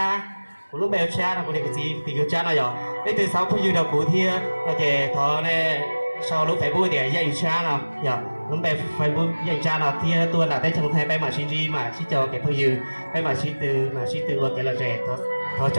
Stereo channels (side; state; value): both; inverted; correlation -1.00